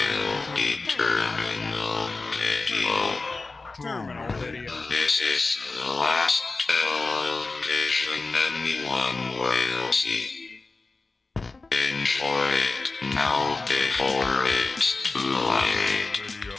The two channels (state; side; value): quieter; right; 3.7 dB